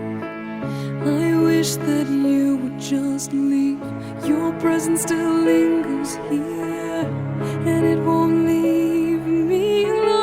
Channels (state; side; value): identical; both; correlation 1.00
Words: I wish that you would just leave. Your presence still lingers here, and it won't leave me